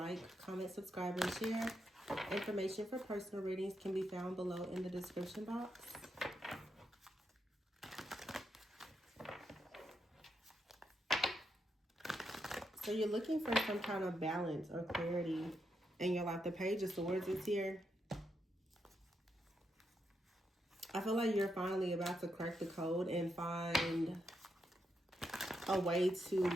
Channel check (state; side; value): normal; both; correlation 0.82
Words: comment, subscribe, and share. Information for personal readings can be found below in the description box. So you're looking for some kind of balance or clarity in your life. The Page of Swords is here. I feel like you're finally about to crack the code and find a way